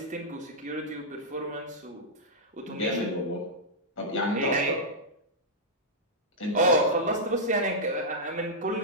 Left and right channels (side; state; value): both; normal; correlation -0.09